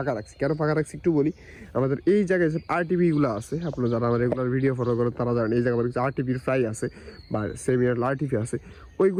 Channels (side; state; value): both; identical; correlation 1.00